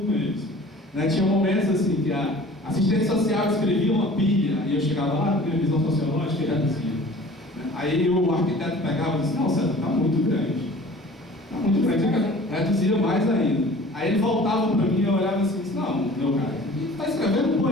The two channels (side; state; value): both; normal; correlation 0.46